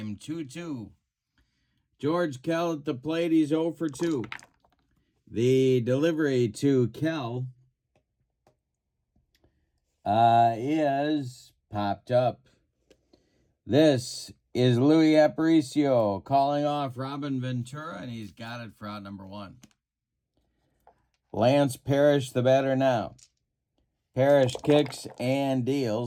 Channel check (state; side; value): identical; both; correlation 1.00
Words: 2-2. George Kell at the plate, he's 0 for 2. The delivery to Kell is popped up. This is Louis Aparicio calling off Robin Ventura, and he's got it for out number 1. Lance Parrish, the batter now. Parrish kicks and